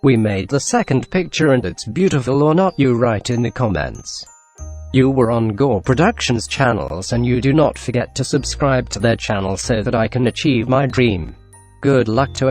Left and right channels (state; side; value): identical; both; correlation 1.00